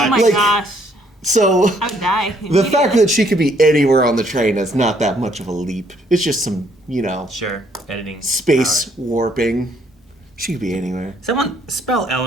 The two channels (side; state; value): both; normal; correlation 0.67